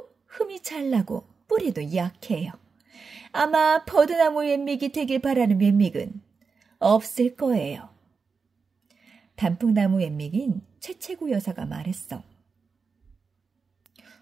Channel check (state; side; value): quieter; left; 5.0 dB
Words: 흠이 잘 나고 뿌리도 약해요. 아마 버드나무 웬믹이 되길 바라는 웬믹은 없을 거예요. 단풍나무 웬믹인 최채구 여사가 말했어.